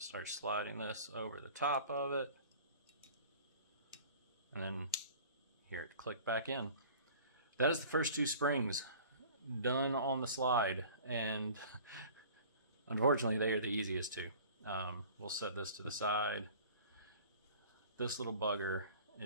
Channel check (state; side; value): inverted; both; correlation -0.45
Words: sliding this over the top of it, and then hear it click back in. That is the first two springs done on the slide, and unfortunately they are the easiest two. We'll set this to the side. This little bugger